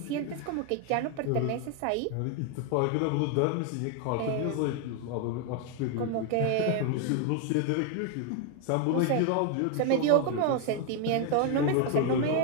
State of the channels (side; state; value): both; different; correlation 0.01